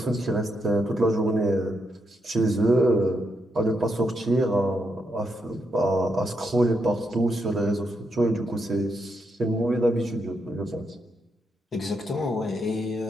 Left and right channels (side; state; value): both; normal; correlation 0.81